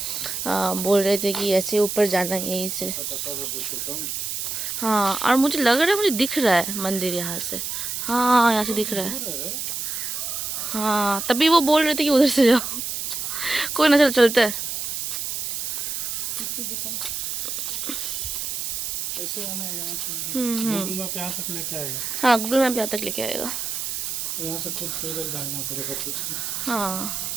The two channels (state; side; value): noise; right; hiss, 3 dB below the sound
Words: बोल रहे थे कि ऐसे ऊपर जाना है यहीं से। हाँ, और मुझे लग रहा है, मुझे दिख रहा है मंदिर यहाँ से। हाँ, यहाँ से दिख रहा है। हाँ, तभी वो बोल रहे थे कि उधर से जाओ। कोई ना, चलो चलते हैं। ऐसे आना है यहाँ से। गूगल मैप यहाँ तक लेके आएगा। हाँ, गूगल मैप यहाँ तक लेके आएगा। यहाँ से खुद पैदल जाना पड़ेगा कुछ। हाँ,